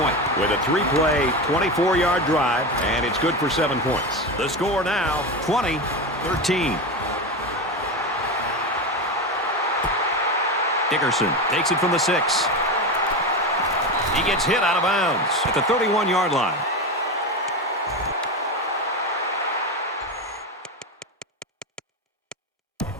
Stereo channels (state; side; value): normal; both; correlation 0.19